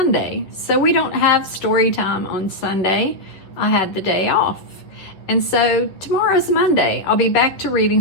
so we don't have story time on Sunday. I had the day off. And so tomorrow's Monday. I'll be back to reading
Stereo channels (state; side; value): late; right; 11 ms